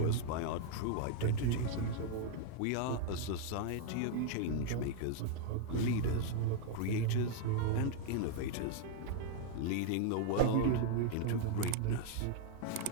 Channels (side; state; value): both; different; correlation 0.00